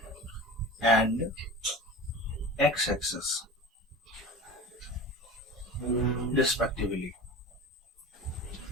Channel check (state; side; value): normal; both; correlation 0.34